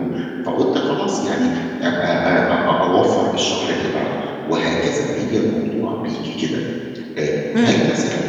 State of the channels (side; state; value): both; identical; correlation 1.00